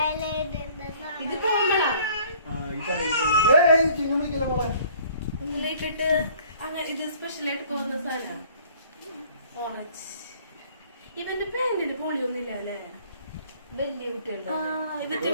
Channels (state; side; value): inverted; both; correlation -0.55